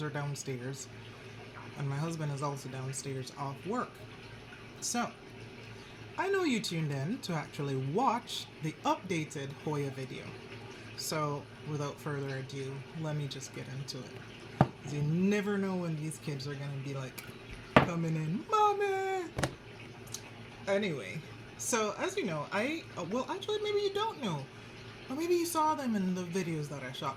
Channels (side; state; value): both; identical; correlation 1.00